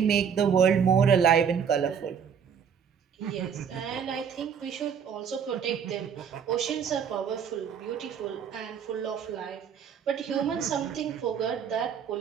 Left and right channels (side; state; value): left; quieter; 7.4 dB